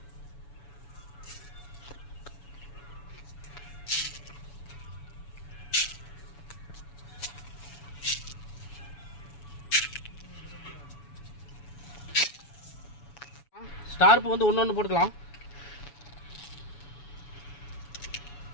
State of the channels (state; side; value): late; right; 7.0 ms